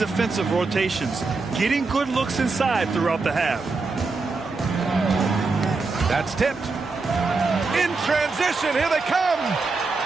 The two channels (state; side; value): quieter; left; 4.0 dB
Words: rotations, getting good looks inside throughout the half. That's tipped. In transition, here they come.